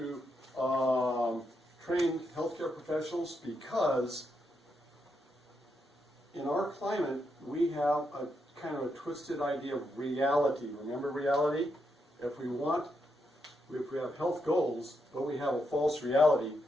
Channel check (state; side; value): normal; both; correlation 0.81